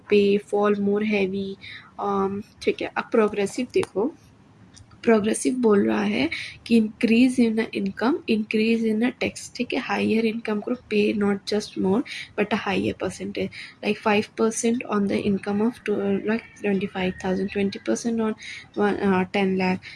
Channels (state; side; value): identical; both; correlation 1.00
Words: पे, फॉल मोर हैवी। ठीक है, अब प्रोग्रेसिव देखो। प्रोग्रेसिव बोल रहा है कि increase in income, increase in tax. ठीक है, हायर इनकम ग्रुप पे not just more but a higher percentage, like 5% on the income of like 25,000, 20% on 10 lakh.